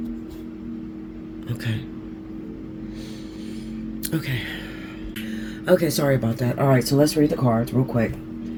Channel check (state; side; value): identical; both; correlation 1.00